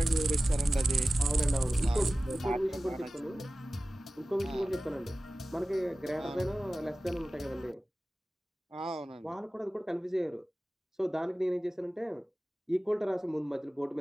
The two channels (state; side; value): normal; both; correlation 0.96